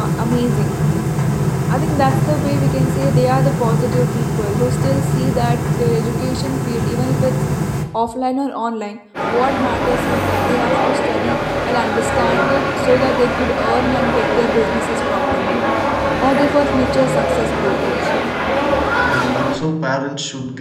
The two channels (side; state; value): both; identical; correlation 1.00